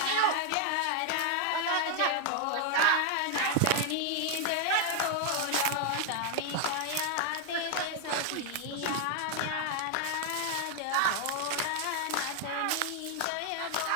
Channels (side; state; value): both; different; correlation 0.01